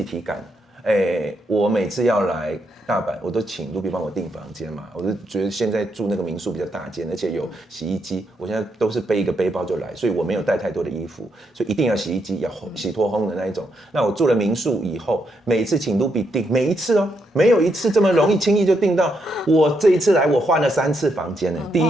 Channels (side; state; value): both; normal; correlation 0.79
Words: 体感，我每次要来大阪，我都请Ruby帮我订房间嘛。我就觉得现在住那个民宿比较大间，而且有洗衣机，我现在都是背一个背包就来，所以我没有带太多的衣服，所以一定要洗衣机，要洗脱烘的那一种。那我住了民宿以后，每一次请Ruby订，每一次没有一次这么容易轻易就订到。我这一次来，我换了3次房间呢。第